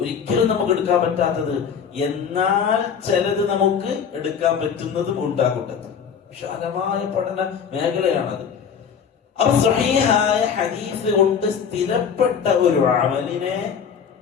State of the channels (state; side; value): quieter; right; 7.1 dB